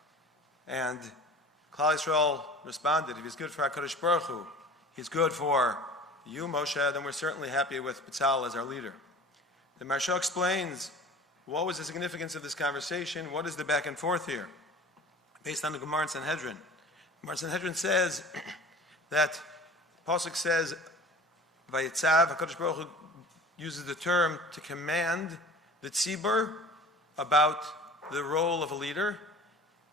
And Klal Yisrael responded, if he's good for HaKadosh Baruch Hu, he's good for you, Moshe, then we're certainly happy with B'Tzalel as our leader. The Maharsha explains, what was the significance of this conversation? What is the back and forth here? Based on the Gemara in Sanhedrin. Gemara in Sanhedrin says that, Pasuk says, Vayitzav, HaKadosh Baruch Hu uses the term to command the tzibur about the role of a leader,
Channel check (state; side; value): normal; both; correlation 0.42